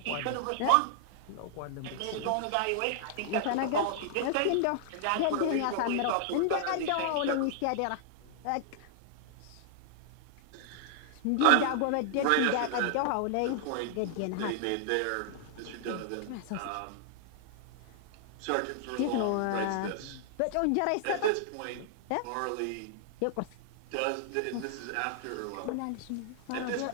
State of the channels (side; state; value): both; different; correlation 0.00